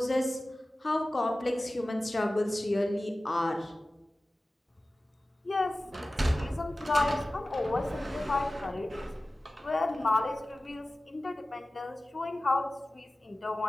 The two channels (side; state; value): both; normal; correlation 0.96